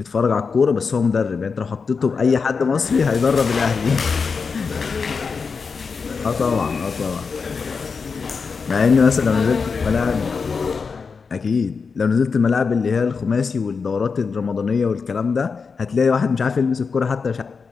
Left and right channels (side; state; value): right; quieter; 5.2 dB